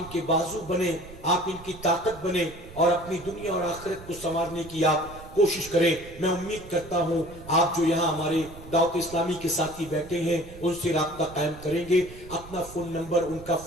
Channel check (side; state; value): right; noise; rumble, 17 dB below the sound